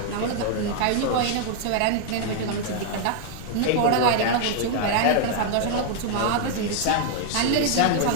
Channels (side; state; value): both; different; correlation 0.00